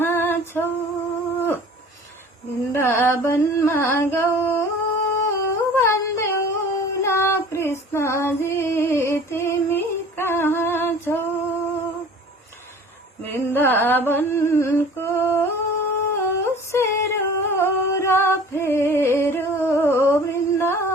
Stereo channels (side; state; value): both; normal; correlation 0.45